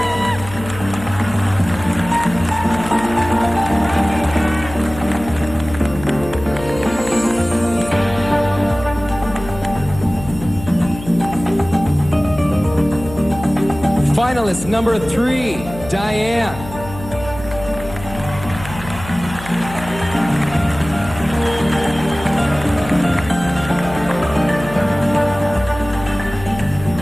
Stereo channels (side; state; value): left; noise; hum, 13 dB below the sound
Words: Finalist number 3, Diane.